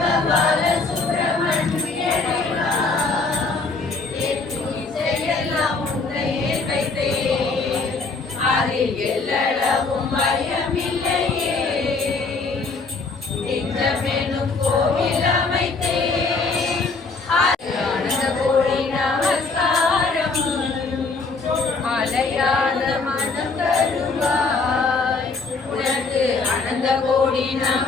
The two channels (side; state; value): right; quieter; 4.1 dB